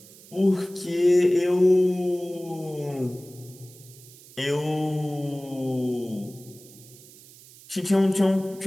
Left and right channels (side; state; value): right; noise; hiss, 21 dB below the sound